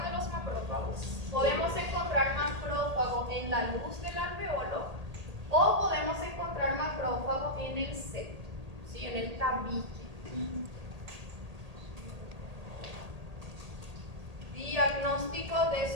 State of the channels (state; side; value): late; left; 1.8 ms